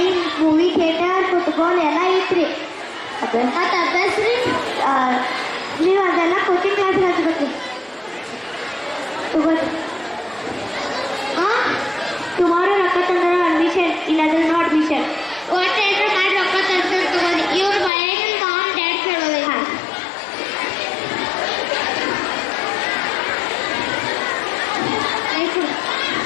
movie theatre, football ಎಲ್ಲ ಐತ್ರಿ. ಮತ್ತು ಅಭ್ಯಾಸ ರೀ ನೀವು ಅದೆಲ್ಲ ಕೋಚಿಂಗ್ ಕ್ಲಾಸ್ ಹಚ್ಬೇಕು ತಗೋರಿ. ಟುಮಾರೋ ರೊಕ್ಕ ತಂದ್ರೆ ಅಡ್ಮಿಷನ್, ಇಲ್ಲಾಂದ್ರೆ ನೋ ಅಡ್ಮಿಷನ್. ಒಟ್ಟು ಏನಾರು ಮಾಡಿ ರೊಕ್ಕ ತಂದ್ರೆ ತಗೋರಿ. ಇವ್ರು ಮನೆಯಲ್ಲಿ ಮಾಮ್ ಡ್ಯಾಡ್ ಕೇಳೋದು. ಹಾಂ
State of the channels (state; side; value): drops out; right; at 17.9 s